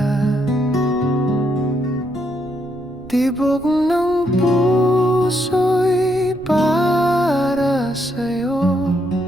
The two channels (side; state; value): right; noise; rumble, 20 dB below the sound